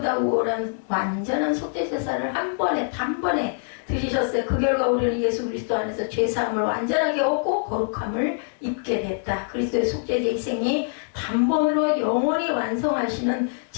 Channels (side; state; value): right; silent; 62 dB below the other